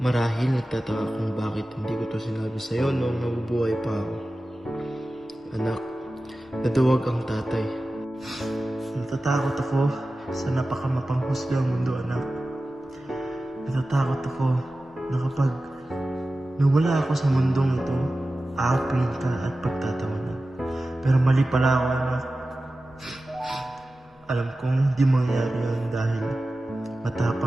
nagtataka kung bakit hindi ko to sinabi sa'yo noong nabubuhay pa ako. Anak, naduwag ang tatay. Natatakot ako sa napakamapanghusgang mundo, anak. Natatakot ako na kapag nawala ako sa mundong ito, aapihin ka at pagtatawanan. Pero mali pala ako, anak. Alam kong hindi mangyayari yun dahil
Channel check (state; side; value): normal; both; correlation 0.95